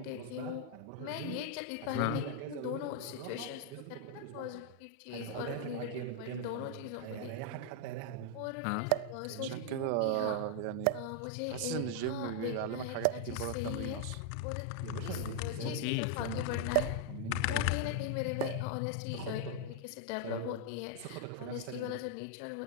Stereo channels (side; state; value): both; different; correlation 0.00